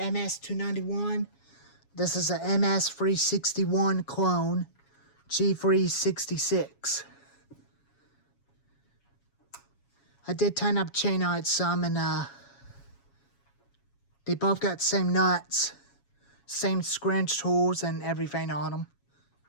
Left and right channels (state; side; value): late; right; 7.2 ms